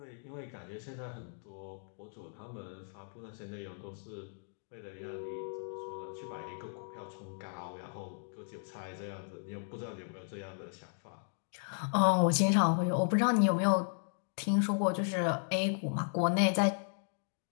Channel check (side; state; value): right; silent; digital silence